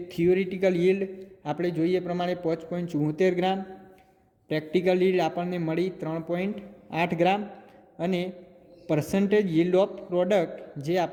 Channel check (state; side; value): identical; both; correlation 1.00